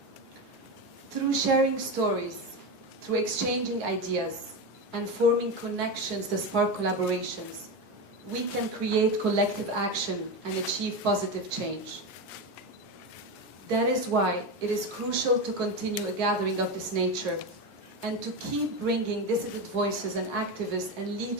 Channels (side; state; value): both; normal; correlation 0.17